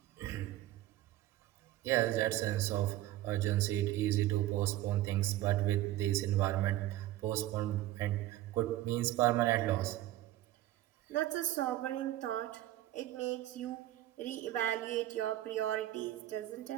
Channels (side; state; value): left; quieter; 14.8 dB